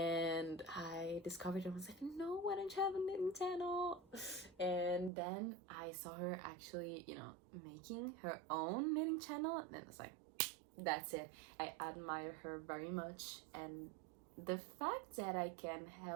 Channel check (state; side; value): drops out; left; at 5.1 s